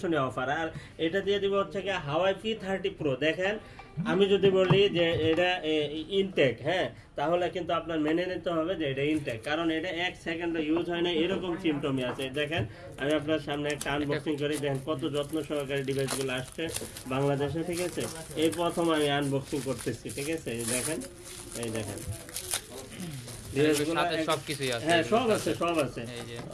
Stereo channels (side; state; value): both; identical; correlation 1.00